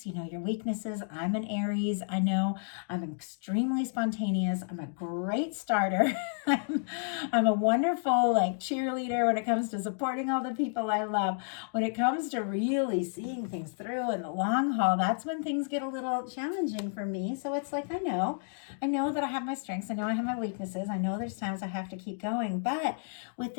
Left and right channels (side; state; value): right; silent; digital silence